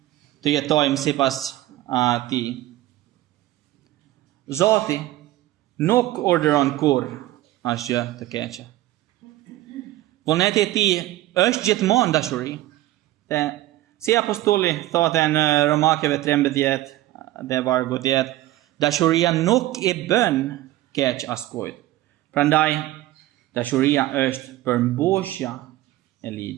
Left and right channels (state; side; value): quieter; left; 15.6 dB